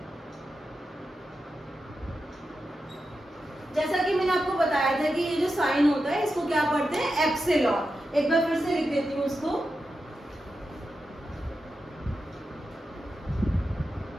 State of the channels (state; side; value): normal; both; correlation 0.90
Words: जैसा कि मैंने आपको बताया था कि ये जो साइन होता है इसको क्या पढ़ते हैं, एप्सिलॉन। एक बार फिर से लिख देती हूँ उसको।